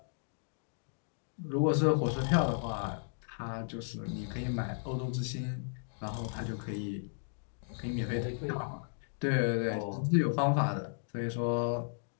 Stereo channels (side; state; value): right; silent; digital silence